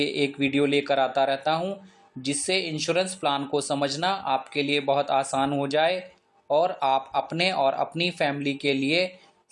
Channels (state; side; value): identical; both; correlation 1.00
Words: एक वीडियो लेकर आता रहता हूं, जिससे इंश्योरेंस प्लान को समझना आपके लिए बहुत आसान हो जाए और आप अपने और अपनी फैमिली के लिए